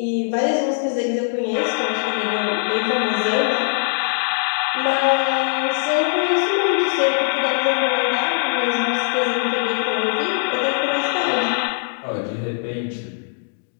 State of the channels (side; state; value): right; silent; digital silence